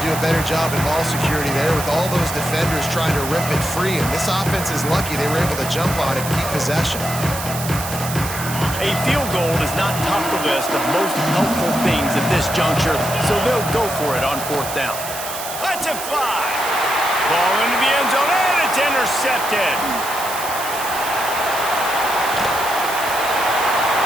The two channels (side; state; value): right; noise; hiss, 8 dB below the sound